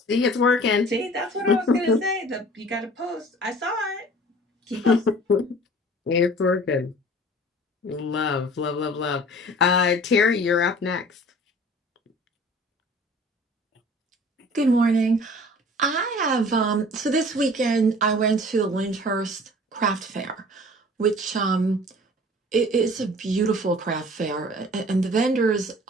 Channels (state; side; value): normal; both; correlation 0.47